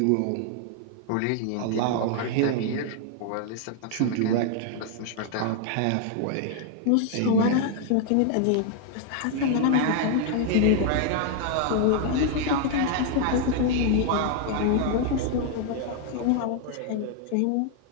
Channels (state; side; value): different; both; correlation 0.00